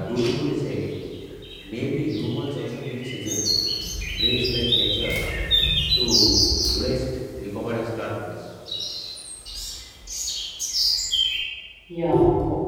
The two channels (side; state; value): both; identical; correlation 1.00